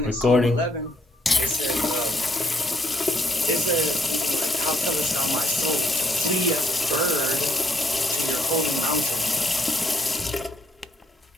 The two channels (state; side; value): normal; both; correlation 0.72